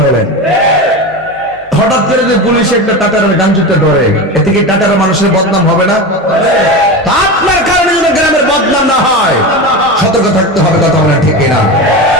বলেন? হঠাৎ করে যে পুলিশ একটা টাটারের গান জুতে ধরে, এতে কি টাটারের মানুষের বদনাম হবে না? আপনার কারণে যেন গ্রামের বদনাম না হয়, সতর্ক থাকতে হবে। কথা বলেন ঠিক কিনা?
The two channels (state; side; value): normal; both; correlation 0.24